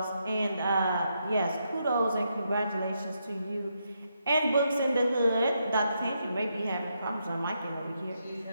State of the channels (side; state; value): both; inverted; correlation -0.80